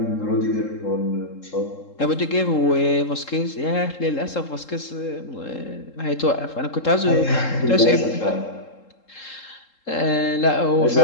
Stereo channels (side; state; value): right; late; 3.7 ms